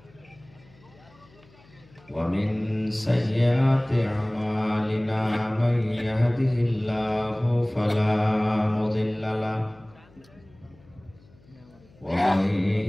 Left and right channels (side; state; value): left; noise; hum, 28 dB below the sound